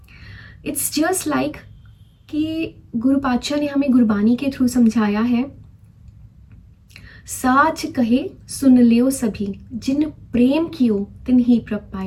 इट्स जस्ट लाइक कि गुरु पातशाह ने हमें गुरबानी के थ्रू समझाया है, साच कहे सुन लियो सभी, जिन प्रेम कियो तिन ही प्रभ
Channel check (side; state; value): both; identical; correlation 1.00